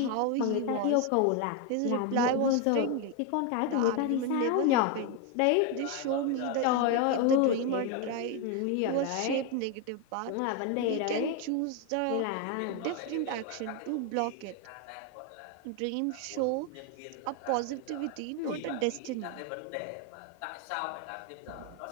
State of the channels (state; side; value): different; both; correlation 0.01